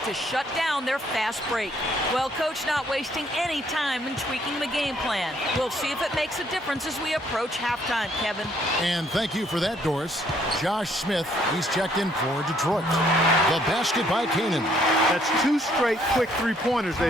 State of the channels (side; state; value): both; normal; correlation 0.66